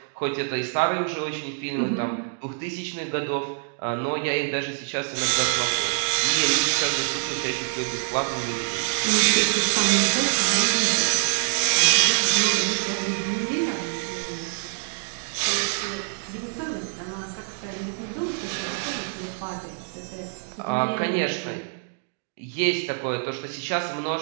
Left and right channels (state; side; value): silent; left; 62 dB below the other